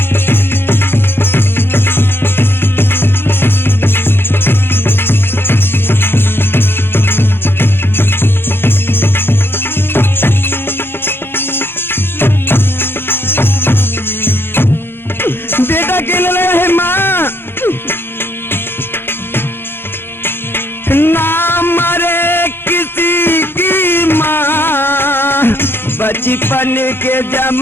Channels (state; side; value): late; right; 0.11 ms